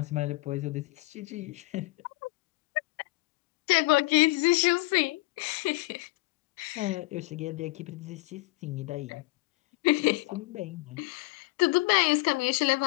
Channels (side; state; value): right; quieter; 22.1 dB